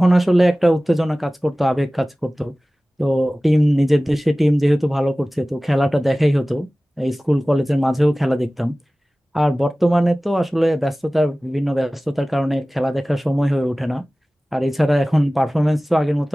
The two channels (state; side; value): normal; both; correlation 0.98